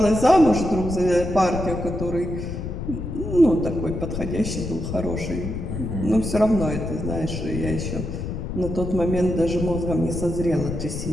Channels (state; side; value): noise; left; rumble, 5 dB below the sound